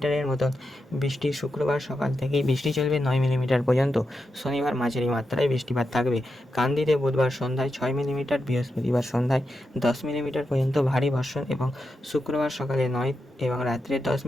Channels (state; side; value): normal; both; correlation 0.87